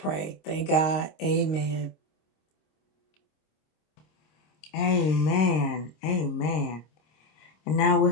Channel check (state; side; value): late; right; 26 ms